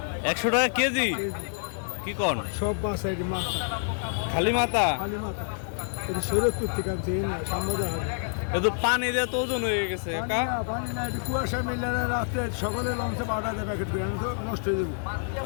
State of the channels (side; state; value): right; silent; digital silence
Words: 100 টাকা কেজি? কি কোন? সব বাসায় মাথা, খালি মাথা? খালি মাথা। এটা শরীয়তপুর থেকে আনছে, এই না সামনে হয়। এ তো পানি দিয়ে তো ওজন হয়ে গেছে কাকা। পানি না, এটা কুয়াশা মেলে না, রাত্রে সকালে লঞ্চে 8,000 প্যাকেট করে, আমি তো নষ্ট হয়ে যাবে